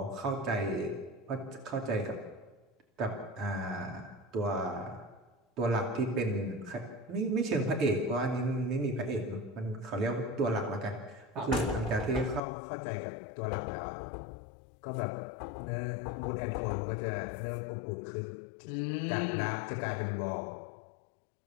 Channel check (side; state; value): right; drops out; at 12.4 s